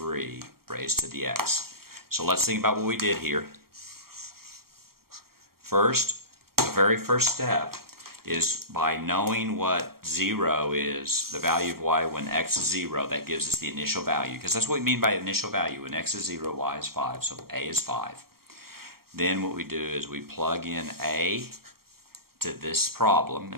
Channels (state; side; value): late; left; 0.94 ms